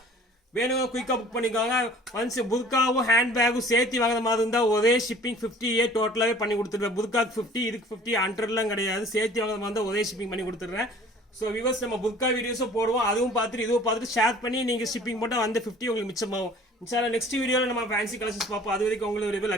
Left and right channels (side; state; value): both; normal; correlation 0.49